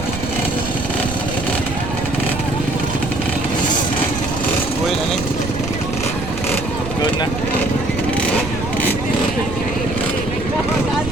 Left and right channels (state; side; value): noise; right; rumble, 7 dB below the sound